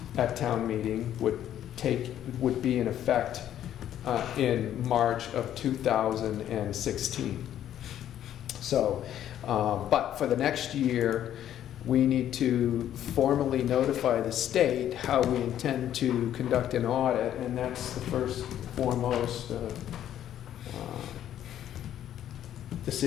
at town meeting, would be in effect in March of 2016. So, but for the next year, we need to formally notify the state how we intend to conduct an audit, and that's the first foremost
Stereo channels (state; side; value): quieter; right; 11.1 dB